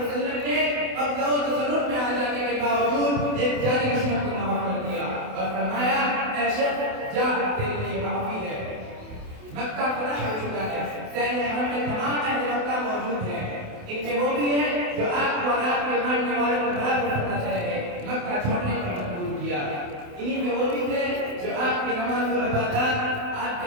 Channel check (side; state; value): left; late; 28 ms